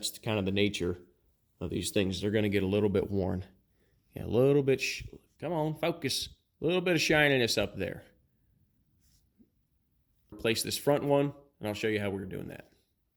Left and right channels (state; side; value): identical; both; correlation 1.00